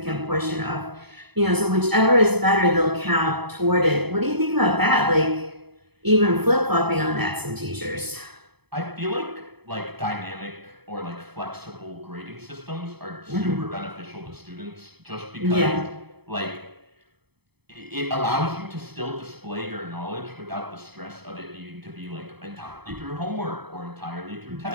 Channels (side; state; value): left; late; 0.98 ms